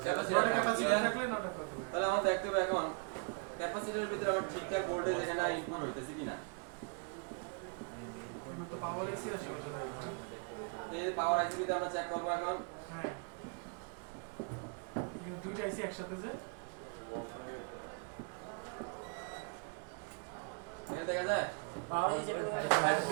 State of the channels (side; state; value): left; quieter; 38.0 dB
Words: ক্যাপাসিটর থাকলে 9টা কত হবে তাহলে আমার দেখতে হবে এখন ক্যাপাসিটরের ভিতরে আমার ঠিকঠাক ভোল্টেজ এখানে ইনপুট হইতেছে কিনা এগুলো তো পাওয়ার এসি আছে এই যে পাওয়ার আইসি তে আমরা চেক করব এখন হ্যাঁ এগুলো দুইটা আইসি একসাথে যে এখানে দেখা যায় পাওয়ার আইসি